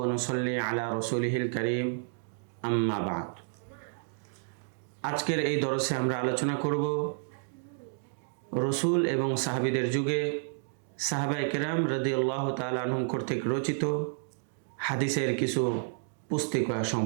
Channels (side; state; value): left; silent; digital silence